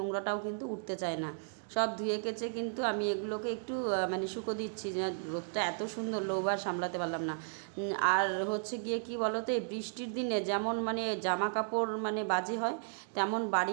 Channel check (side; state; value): left; silent; digital silence